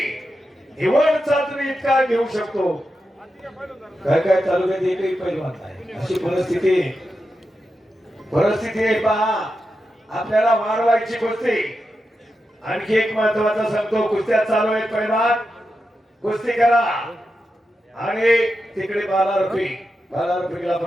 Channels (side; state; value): both; normal; correlation 0.88